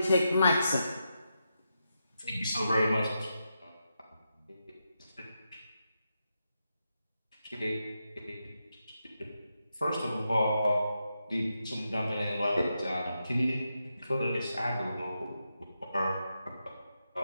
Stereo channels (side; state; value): both; inverted; correlation -0.86